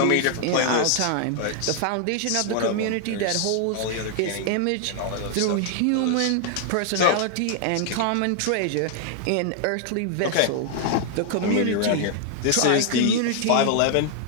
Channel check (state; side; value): different; both; correlation -0.01